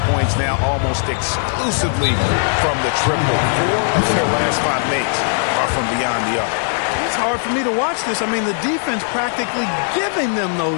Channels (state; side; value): silent; right; 66 dB below the other